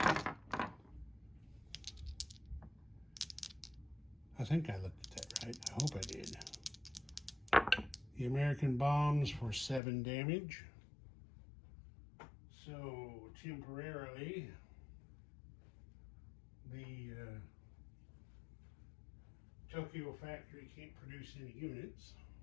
I think I looked at that right. I hope I did. The American bombs for 7 damage. So temporarily, the Tokyo factory can't produce any units.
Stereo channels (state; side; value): drops out; right; at 9.8 s